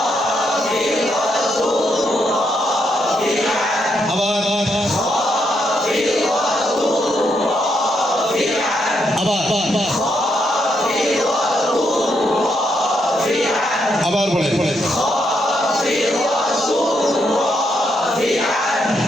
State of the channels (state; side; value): normal; both; correlation 0.78